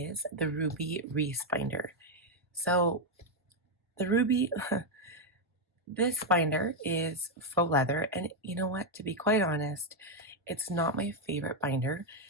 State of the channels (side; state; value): both; normal; correlation 0.02